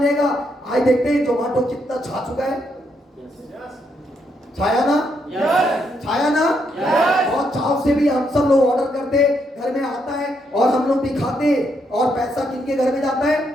लेगा। आज देखते हैं जोमेटो कितना छा चुका है। छाया ना? छाया ना? बहुत चाव से भी हम सब लोग ऑर्डर करते, घर में आता है और हम लोग भी खाते। और पैसा किनके घर में जाता है?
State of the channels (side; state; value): both; normal; correlation 0.77